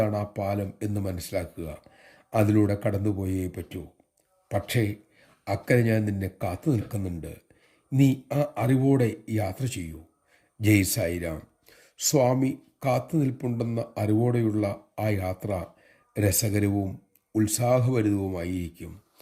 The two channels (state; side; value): identical; both; correlation 1.00